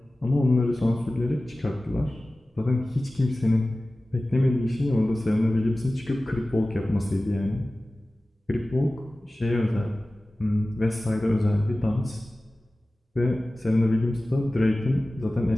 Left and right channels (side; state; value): both; normal; correlation 0.97